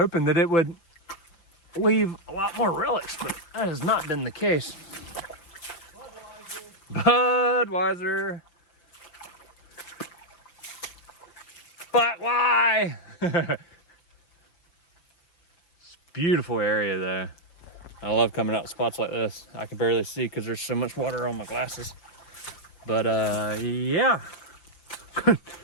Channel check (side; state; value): right; late; 5.9 ms